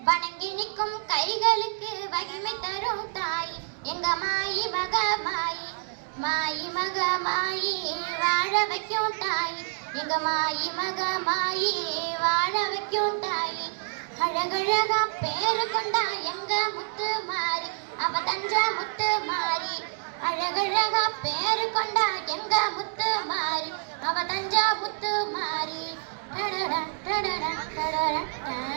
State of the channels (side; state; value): left; silent; digital silence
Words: வணங்கி நிற்கும் கைகளுக்கு வகிமை தரும் தாய் எங்க மாயி மக மாயி. மாயி மக மாயி வாழ வைக்கும் தாய் எங்க மாயி மக மாயி வாழ வைக்கும் தாய். அழகழகா பேரு கொண்டா எங்க முத்து மாறி, அவ தஞ்ச முத்து மாறி. அழகழகா பேரு கொண்டா எங்க முத்து மாறி, அவ தஞ்ச முத்து மாறி.